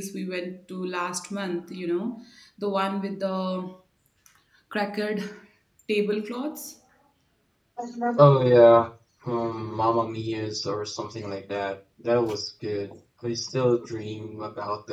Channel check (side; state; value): both; identical; correlation 1.00